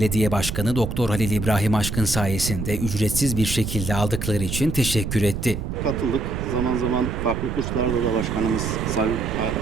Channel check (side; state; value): right; noise; rumble, 4 dB below the sound